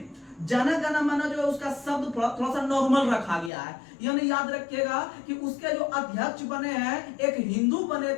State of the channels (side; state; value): right; drops out; at 3.5 s